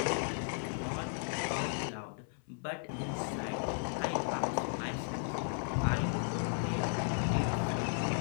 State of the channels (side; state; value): right; silent; 54 dB below the other